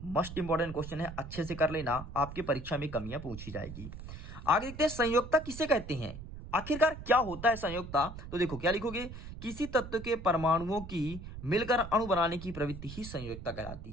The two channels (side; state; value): right; noise; rumble, 11 dB below the sound